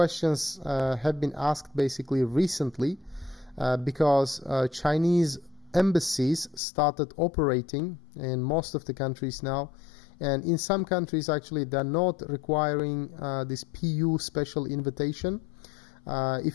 have been asked basically recently because Chinese embassies started operating in most of the countries now. And in some countries, actually, they're not requiring this PU special invitation.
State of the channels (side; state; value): right; drops out; at 6.6 s